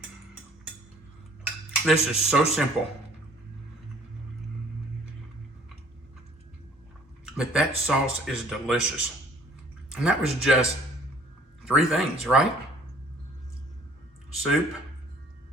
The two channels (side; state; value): both; normal; correlation 0.56